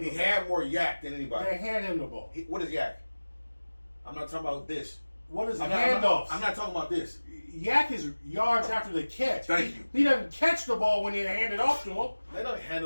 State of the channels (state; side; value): inverted; both; correlation -1.00